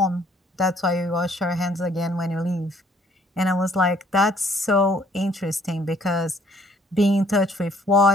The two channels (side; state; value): both; normal; correlation 0.61